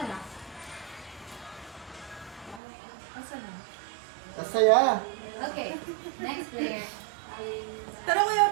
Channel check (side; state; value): left; drops out; at 2.6 s